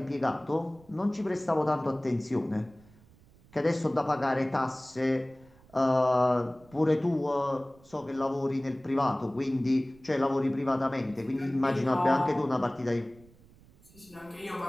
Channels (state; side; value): noise; right; rumble, 26 dB below the sound